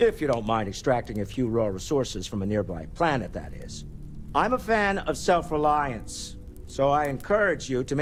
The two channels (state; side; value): identical; both; correlation 1.00